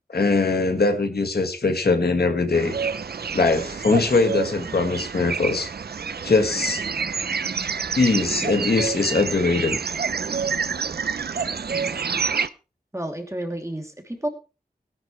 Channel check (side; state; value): both; normal; correlation 0.54